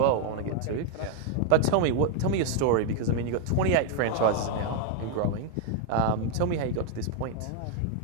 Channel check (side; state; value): both; different; correlation 0.00